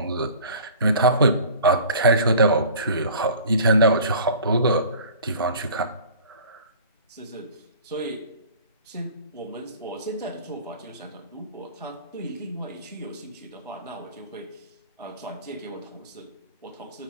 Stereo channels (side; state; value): both; inverted; correlation -0.45